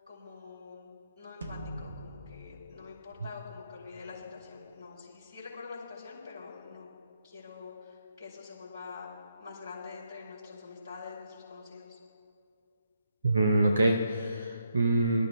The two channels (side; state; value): both; inverted; correlation -0.78